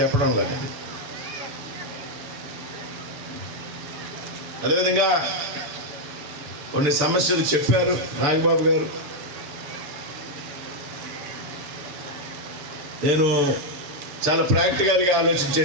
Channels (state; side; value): late; left; 6.8 ms